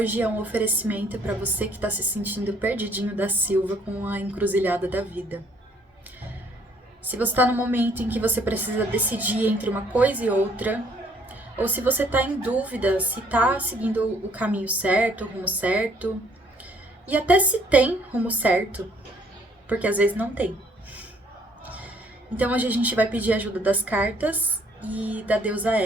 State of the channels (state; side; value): normal; both; correlation 0.63